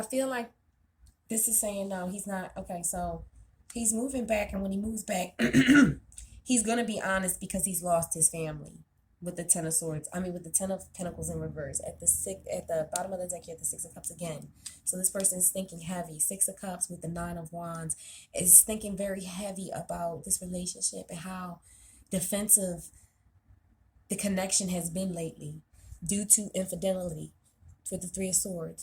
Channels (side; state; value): both; identical; correlation 1.00